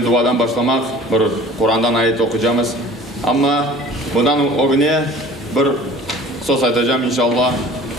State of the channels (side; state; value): both; normal; correlation 0.46